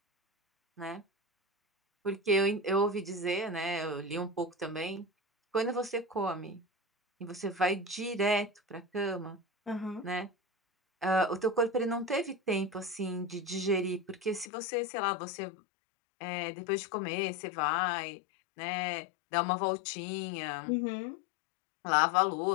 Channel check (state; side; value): drops out; right; at 14.5 s